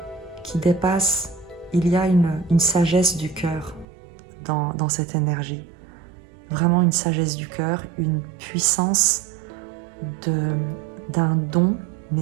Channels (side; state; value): left; drops out; at 3.9 s